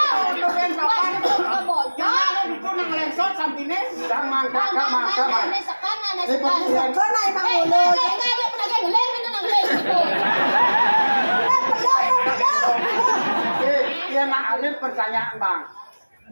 Alif pertanyaan bang.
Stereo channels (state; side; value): inverted; both; correlation -1.00